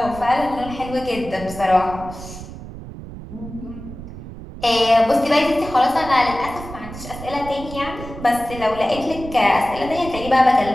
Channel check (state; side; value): noise; right; rumble, 12 dB below the sound